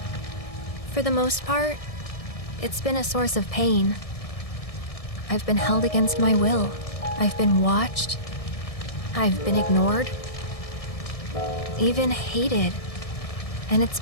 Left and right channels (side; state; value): right; late; 1.6 ms